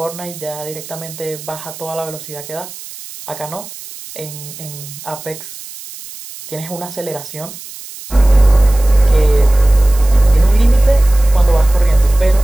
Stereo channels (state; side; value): noise; right; hiss, 15 dB below the sound